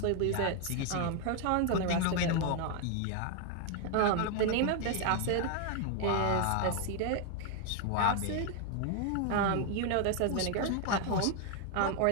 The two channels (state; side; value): different; both; correlation 0.00